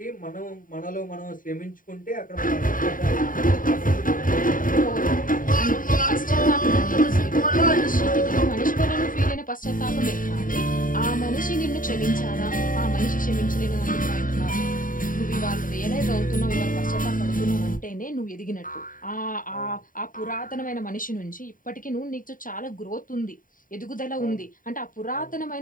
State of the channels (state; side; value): late; right; 0.39 ms